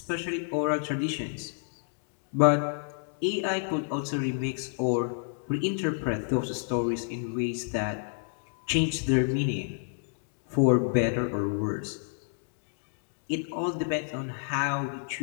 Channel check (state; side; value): silent; right; digital silence